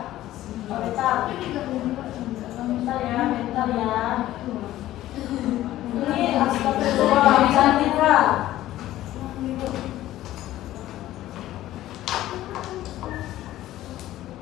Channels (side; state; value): right; quieter; 14.5 dB